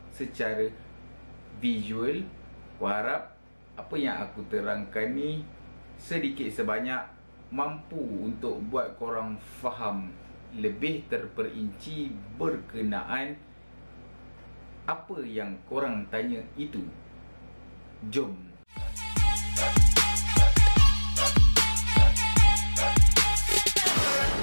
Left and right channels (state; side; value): inverted; both; correlation -1.00